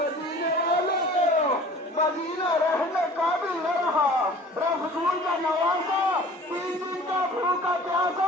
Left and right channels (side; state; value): both; normal; correlation 0.46